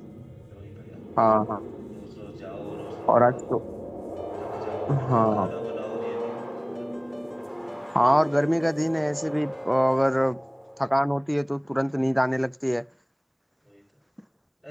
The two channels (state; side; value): identical; both; correlation 1.00